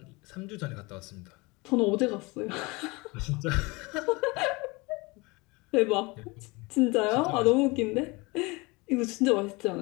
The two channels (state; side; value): quieter; right; 25.2 dB